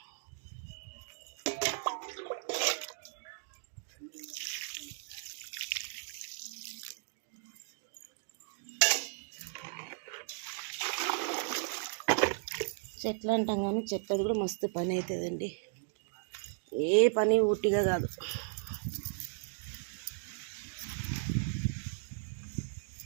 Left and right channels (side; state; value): left; silent; digital silence